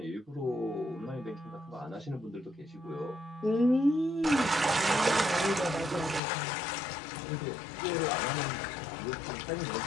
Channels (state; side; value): drops out; right; at 6.2 s